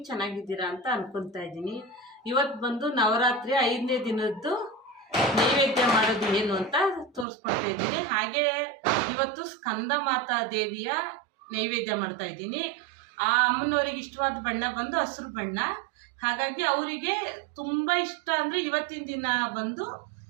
ಚೆನ್ನಾಗಿದ್ದೀರಾ ಅಂತ ಅನ್ಕೊತಾ ಇದ್ದೀನಿ. ಇವತ್ತು ಬಂದು ನವರಾತ್ರಿ 5ನೇ ದಿನದ್ದು ನೈವೇದ್ಯ ಮಾಡೋದು ಏನು ಅಂತ ತೋರಿಸ್ಕೊಡ್ತಾ ಇದ್ದೀನಿ. ಹಾಗೆ ಇವತ್ತು ಸ್ಕಂದ ಮಾತಾ ದೇವಿಯ ನೈವೇದ್ಯ ಮಾಡ್ತಾ ಇದ್ದೀನಿ. ಆ ಅಮ್ಮನವರಿಗೆ ಇಷ್ಟವಾದ ಬಣ್ಣ ಬಂದು ಹಸಿರು ಬಣ್ಣ. ಹಾಗಾಗಿ ಅವರಿಗೆ ತುಂಬ ಇಷ್ಟ ಅಂದರೆ ಇವತ್ತಿನ ದಿನ ಬಂದು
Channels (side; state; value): left; drops out; at 7.2 s